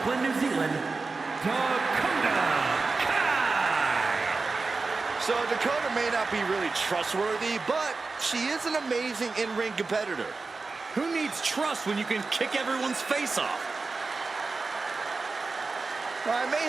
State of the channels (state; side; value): quieter; left; 4.0 dB